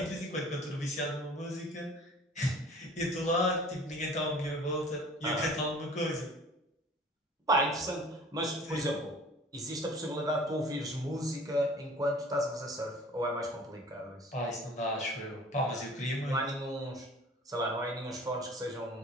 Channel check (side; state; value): both; normal; correlation 0.47